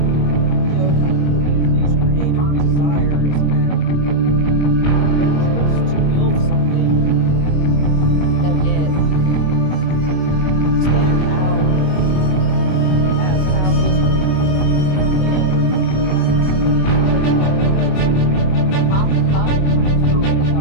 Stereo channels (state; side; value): late; right; 21 ms